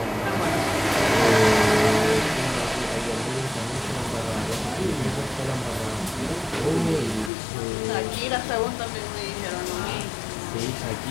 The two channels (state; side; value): drops out; right; at 7.3 s